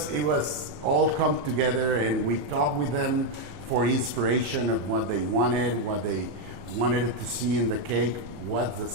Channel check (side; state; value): left; late; 34 ms